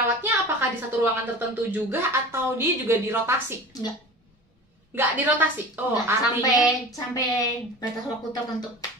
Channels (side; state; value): both; normal; correlation 0.36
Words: apakah di satu ruangan tertentu juga atau dia juga dirotasi? Enggak dirotasi. Artinya sampai batas waktu tertentu.